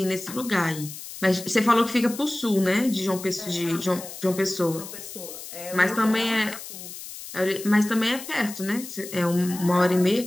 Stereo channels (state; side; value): noise; left; hiss, 12 dB below the sound